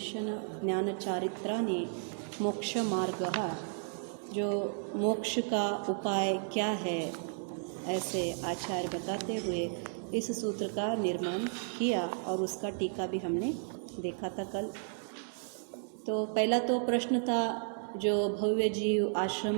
ज्ञान चारित्राणि मोक्ष मार्ग, जो मोक्ष का उपाय क्या है ऐसे आचार्य बताते हुए इस सूत्र का निर्माण किया और उसका टीका भी हमने देखा था कल। तो पहला तो प्रश्न था, जो भव्य जीव आश्रम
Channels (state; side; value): silent; left; digital silence